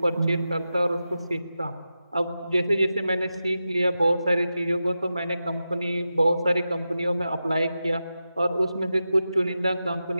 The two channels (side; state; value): both; inverted; correlation -0.91